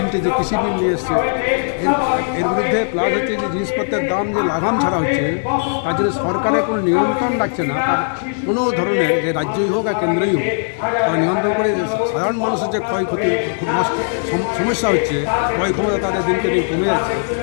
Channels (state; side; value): silent; right; digital silence